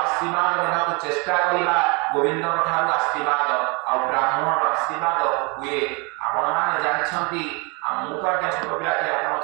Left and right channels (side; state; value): left; quieter; 30.1 dB